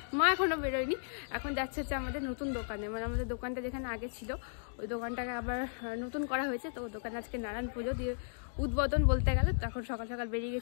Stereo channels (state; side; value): silent; right; digital silence